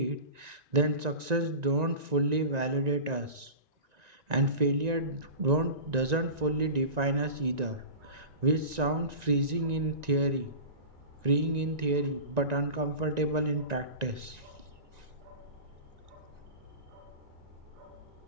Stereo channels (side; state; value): left; late; 1.9 ms